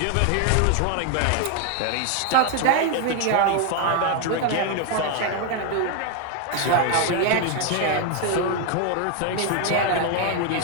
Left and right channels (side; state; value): both; different; correlation 0.01